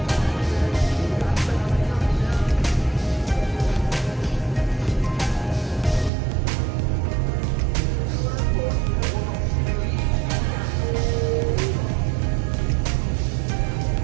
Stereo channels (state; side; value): drops out; left; at 6.1 s